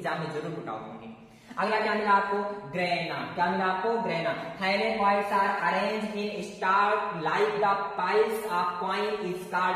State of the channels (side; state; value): both; identical; correlation 1.00